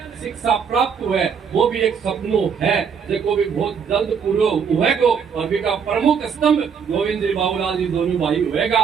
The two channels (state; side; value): quieter; left; 6.7 dB